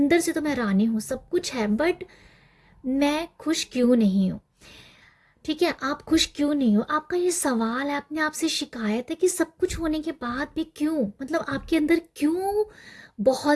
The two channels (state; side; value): identical; both; correlation 1.00